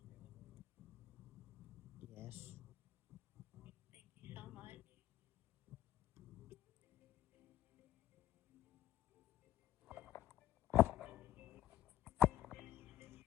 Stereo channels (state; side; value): quieter; right; 12.2 dB